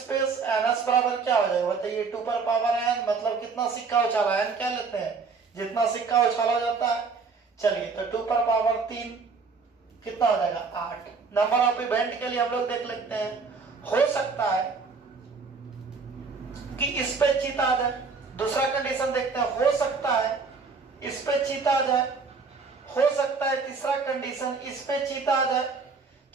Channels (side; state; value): left; quieter; 4.8 dB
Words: NS बराबर क्या हो जाएगा? बताइए 2 पर पावर n, मतलब कितना सिक्का उछाला? n क्या लेते हैं? जितना सिक्का उछाला जाता है। चलिए तो 2 पर पावर 3 कितना हो जाएगा? 8। नंबर ऑफ इवेंट के लिए हम लोग देख लेते हैं। हो सकता है कि इस पे चित आ जाए। दूसरा कंडीशन देखते हैं। हो सकता है इस पे चित आ जाए। हो सकता है तीसरा कंडीशन इस पे चित आ जाए।